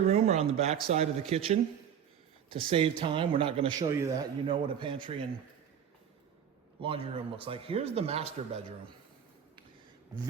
room are on the back side of the kitchen. To save time, we're not going to show you that. You know what a pantry and laundry room looks like. Here's the master bedroom.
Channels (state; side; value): quieter; left; 8.6 dB